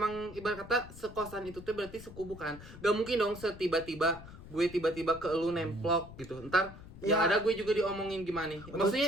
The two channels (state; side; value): noise; left; rumble, 16 dB below the sound